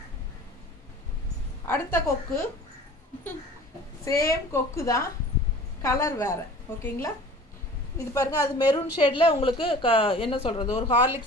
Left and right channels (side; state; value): both; normal; correlation 0.44